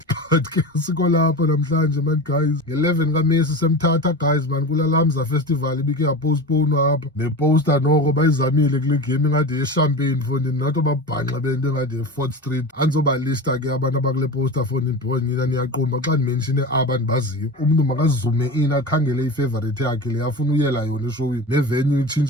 but ke siko lapha namhlanje man guys. Nge-11 kaMesi semthatha guys man kula Lamza festival ibike yapostponwa apha. Neposter noko bayizamile kule game ingade yechampagne fundi nathi babhanxa bento engade ye-4th Street. Andizobalista ke abantu abakule poster fundi ndibona nina niyaqomba xa ndimenshine aba ndibaziyo. Umntu makazume in akhangele ifavorite yakhe le afuna uyela yona eshowini. Nevenue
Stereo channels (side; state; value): both; normal; correlation 0.29